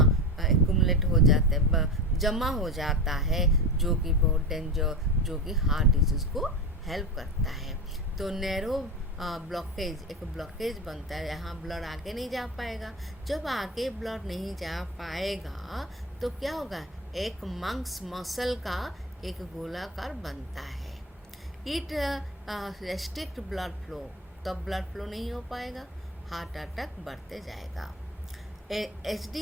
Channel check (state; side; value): normal; both; correlation 0.24